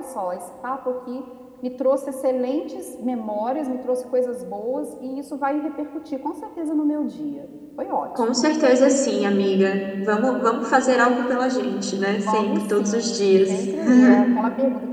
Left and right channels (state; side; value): identical; both; correlation 1.00